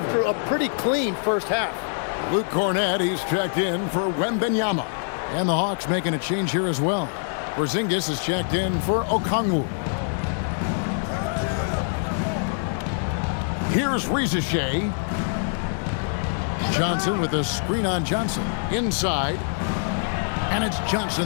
a pretty clean first half. Luke Cornett, he's checked in for Wembanyama. And the Hawks making a change here as well. Porzingis is checked in for Okongwu. Here's Riziche. Johnson with a screen on Johnson. Inside. And it's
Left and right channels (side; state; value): right; silent; digital silence